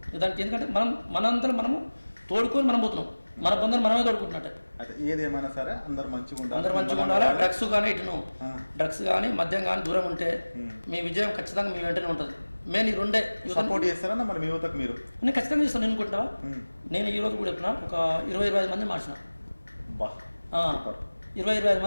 దానికి. ఎందుకంటే మనంతా మనము తోడుకొని మనం పోతున్నాం, మన బంధువులు మనమే తోడుకుంటున్నట్టే. ఏదేమైనా సరే అందరు మంచిగా ఉండాలి. డ్రగ్స్ కానీ మద్యం కానీ దూరం ఉంటే మీ విజయం ఖచ్చితంగా మీ వెంటనే ఉంటుంది. నేను ఈ రెండే సపోర్ట్ చేస్తారా మరి మీ యువతకు? మీరు నేను ఖచ్చితంగా చేస్తాను. నేను అనుకుంటావా, నేను ఈ రోజు కూడా చెప్పిన ఒక 20-25 మంది మార్చిన, 20-25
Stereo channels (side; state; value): both; inverted; correlation -1.00